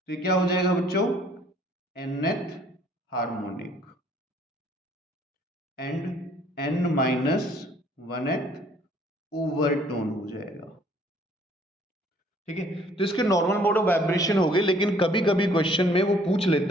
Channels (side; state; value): both; normal; correlation 0.59